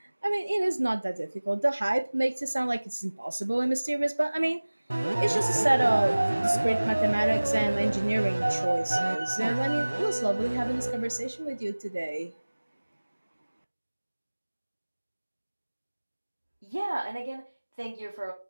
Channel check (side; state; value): both; inverted; correlation -1.00